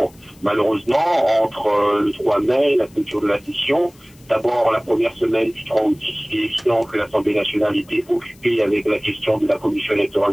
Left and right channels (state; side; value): noise; left; hiss, 28 dB below the sound